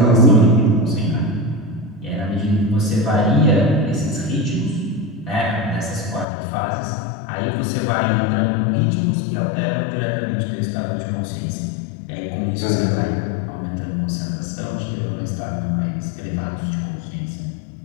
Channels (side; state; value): right; drops out; at 6.2 s